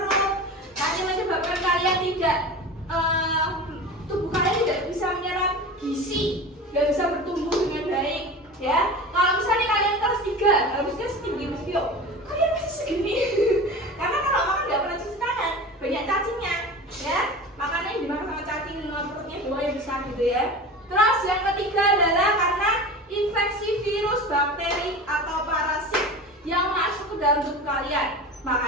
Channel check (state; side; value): normal; both; correlation 0.33